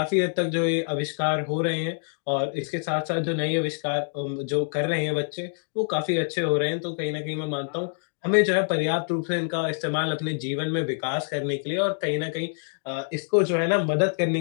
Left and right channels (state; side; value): silent; right; digital silence